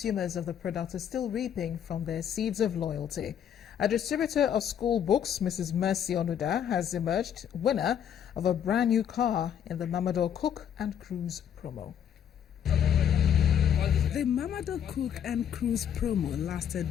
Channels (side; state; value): right; quieter; 9.1 dB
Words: of the product are still reaping from their seeds of loyalty. A distributor of school books, Mrs. Mercy Onuda, has emerged winner of a brand new car in the Mamador Cook and Cruise promo. The Mamador Cook and Cruise promo